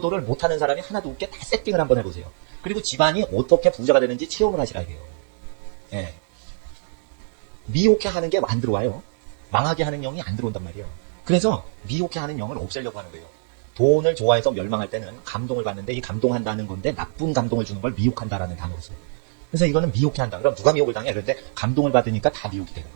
못하는 사람이 하나도 없게 다 세팅을 한번 해보세요. 그리고 집안이 어떻게 부자가 되는지 체험을 하시라 이게요. 예. 미혹해 하는 게 안 들어와요. 망하게 하는 영이 안 들어온단 말이에요. 그래서 미혹해 하는 영을 없애려고 하는 거예요. 돈을 좋아해서 멸망할 때는 감동을 받는데 이 감동한다는 건데 나쁜 감동을 주는 걸 미혹한다라는 단어로 써요. 그래서 이거는 미혹해 한다. 그럼 누가 미혹을 당해? 그런데 감동을 받으니까 다 미혹이 되는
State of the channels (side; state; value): left; silent; 61 dB below the other